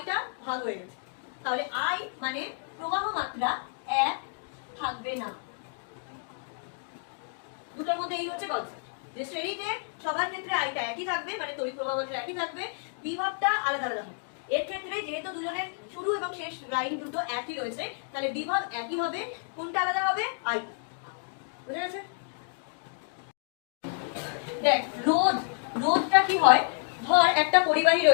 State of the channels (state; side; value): silent; right; 58 dB below the other